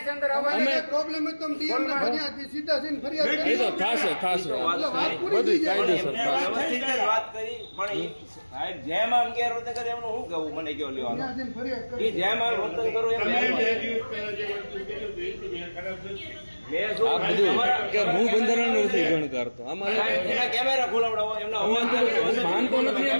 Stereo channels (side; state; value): both; inverted; correlation -1.00